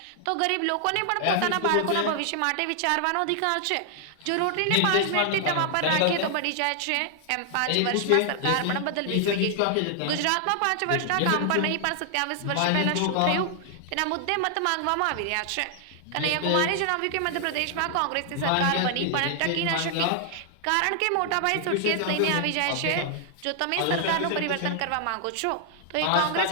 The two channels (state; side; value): different; both; correlation 0.00